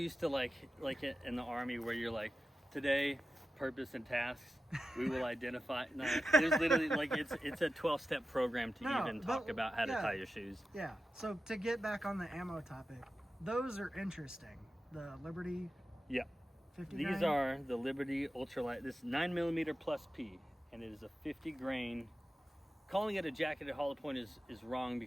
to like in the Army where you're like, today, purpose and tasks, we will identify. No, there's literally like it's a 12-step program to even talk about how to tie your shoes. Yeah. So to get back on the ammo topic, those are interesting. The Liberty. Yeah. 50 These grain? are the Liberty Ultralight. This is 9mm plus P, and it is a 50 grain. Calling it a jacketed hollow point is wrong,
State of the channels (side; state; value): both; normal; correlation 0.92